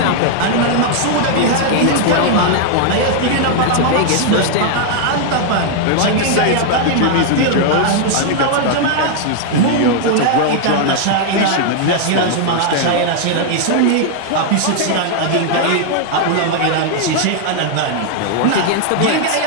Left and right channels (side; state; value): both; different; correlation 0.00